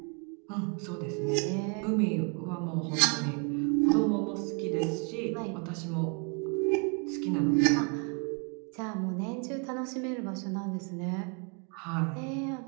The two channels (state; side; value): quieter; left; 36.4 dB